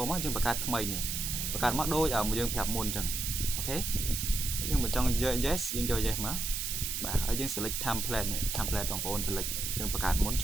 មកយើងបង្កើតថ្មីនេះបង្កើតមកដូចយើងប្រាប់មុនអញ្ចឹងអូខេយើងបើចង់យក yes យើងយក yes មកបាទហើយយើង select template នេះ template បងប្អូន select យើងបង្កើតមុនជ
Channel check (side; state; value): right; noise; hiss, 2 dB below the sound